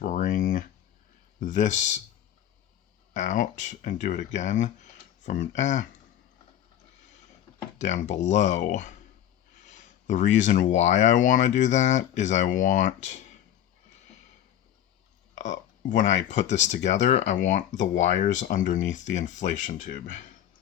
this out and do it again from down below. The reason why I want to do that is I want, when I put this together, I want the wires underneath the inflation tube.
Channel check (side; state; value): right; quieter; 11.0 dB